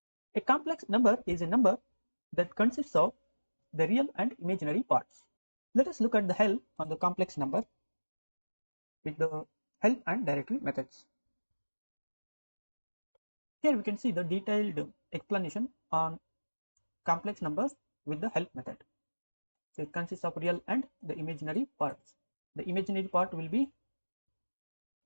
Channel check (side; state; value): both; inverted; correlation -1.00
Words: A complex number is a number that consists of the real and imaginary parts. Let us look at the help on the complex number with the help and directory methods. Here we can see the detailed explanation on complex numbers with the help method. So it consists of real and the imaginary parts. The imaginary part will be